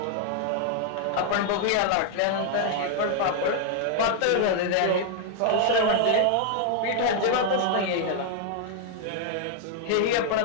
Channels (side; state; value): both; different; correlation 0.00